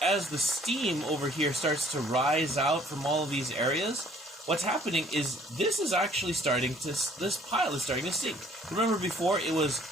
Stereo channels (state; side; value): normal; both; correlation 0.58